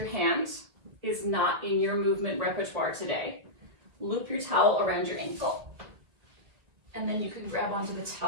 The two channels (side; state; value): left; late; 2.0 ms